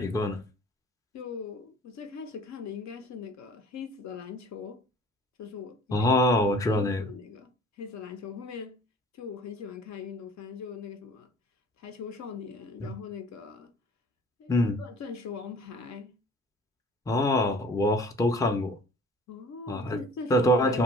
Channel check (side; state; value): both; normal; correlation 0.49